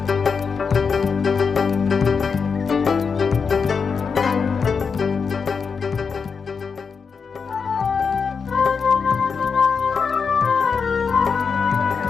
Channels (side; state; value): right; quieter; 5.6 dB